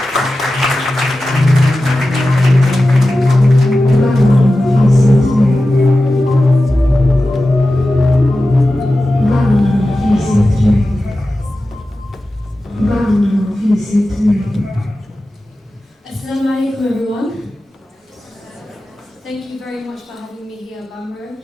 Assalamu alaikum, everyone. Thank you very much for having me here, Bamro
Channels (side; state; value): both; normal; correlation 0.94